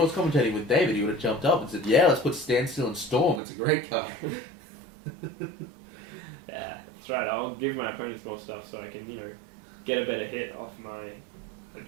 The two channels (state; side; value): drops out; left; at 3.4 s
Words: was commentating with David, he would have jumped up and said, yeah, let's put Standstill and Storm, it's a great card. Yeah, that's right. I'll give my opponents more stuff so I can, get a better hit off my